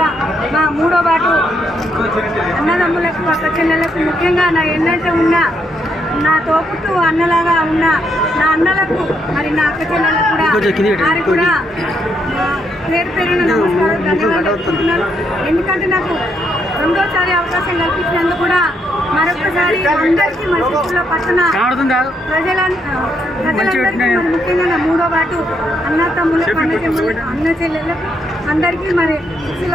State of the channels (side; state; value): both; normal; correlation 0.76